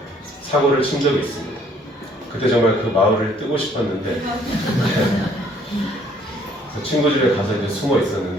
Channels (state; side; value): normal; both; correlation 0.62